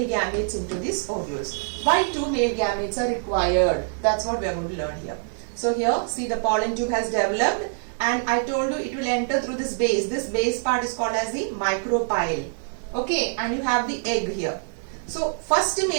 gametes into these ovules. Why 2 male gametes are required? That's what we are going to learn here. So here, see, the pollen tube has developed, and I told you it will enter through this base. This base part is called as the micropyle. Okay, and you have the egg here. So first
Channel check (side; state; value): left; silent; 62 dB below the other